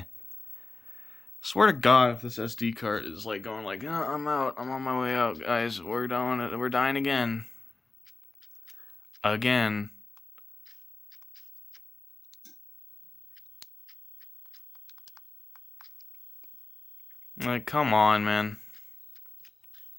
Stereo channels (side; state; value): right; quieter; 3.6 dB